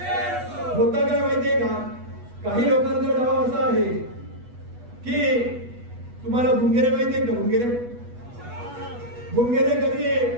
होतं काय माहितीये का, काही लोकांचा डाव असा आहे की तुम्हाला भुंगेरे माहितीये का, भुंगेरे कधी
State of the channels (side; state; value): left; late; 8.2 ms